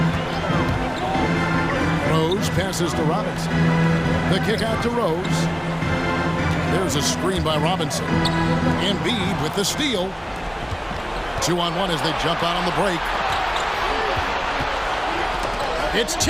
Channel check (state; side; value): identical; both; correlation 1.00